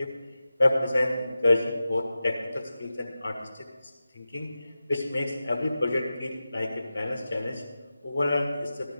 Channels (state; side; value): inverted; both; correlation -0.93